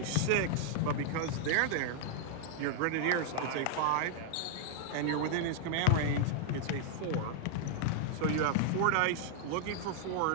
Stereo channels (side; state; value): both; different; correlation -0.01